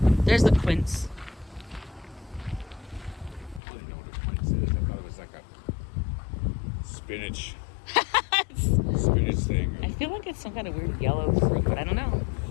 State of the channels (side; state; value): right; drops out; at 3.6 s